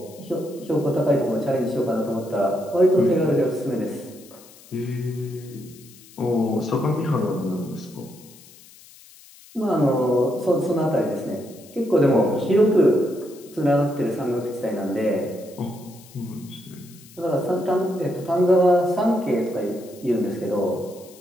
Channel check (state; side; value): noise; left; hiss, 23 dB below the sound